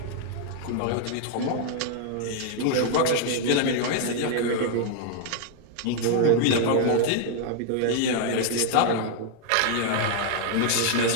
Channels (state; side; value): different; both; correlation 0.00